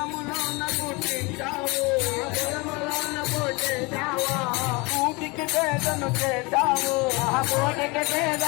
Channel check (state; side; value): quieter; right; 26.7 dB